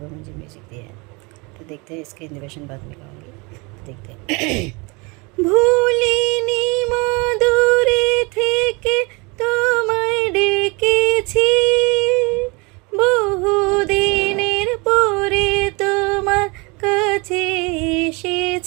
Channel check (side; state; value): left; quieter; 28.0 dB